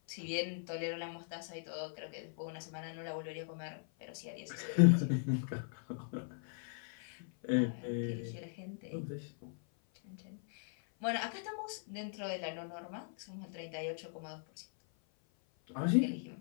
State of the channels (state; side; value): silent; right; 52 dB below the other